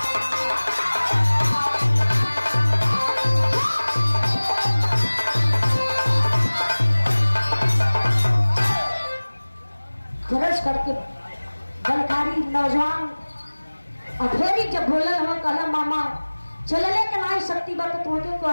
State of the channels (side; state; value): both; inverted; correlation -1.00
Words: करके बलकारी नौजवान अधेरी जब बोलल हम कहला मामा चलले के नाई शक्ति बात तोके